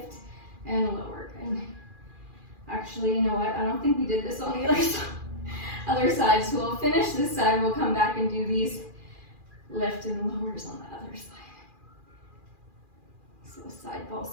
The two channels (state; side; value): late; left; 2.4 ms